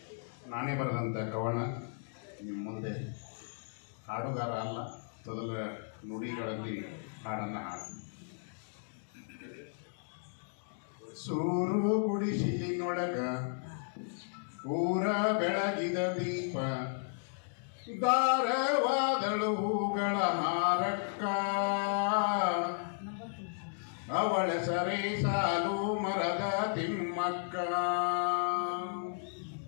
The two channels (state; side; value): silent; right; digital silence